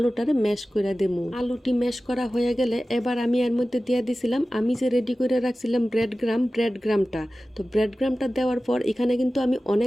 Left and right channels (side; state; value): both; normal; correlation 0.96